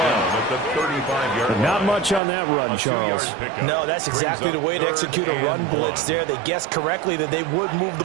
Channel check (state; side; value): drops out; left; at 2.2 s